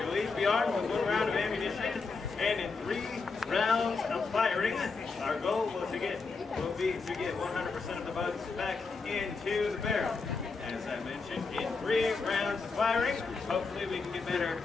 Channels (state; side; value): quieter; right; 4.4 dB